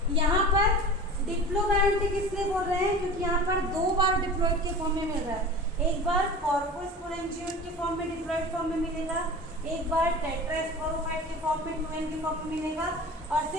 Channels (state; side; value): normal; both; correlation 0.36